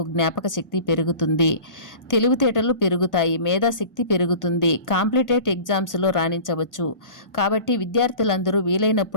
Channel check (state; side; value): late; right; 1.5 ms